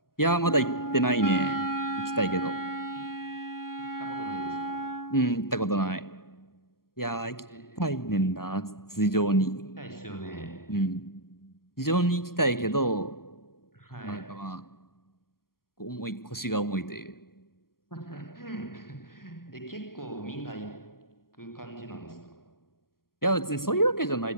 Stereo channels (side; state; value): right; late; 0.92 ms